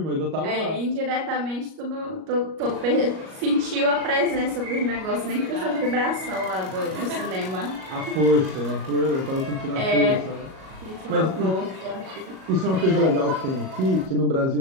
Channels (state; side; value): late; left; 38 ms